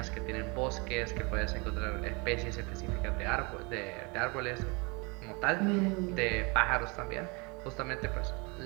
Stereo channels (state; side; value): quieter; left; 29.3 dB